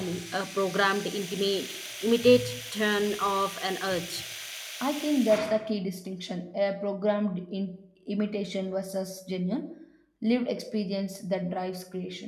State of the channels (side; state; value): both; identical; correlation 1.00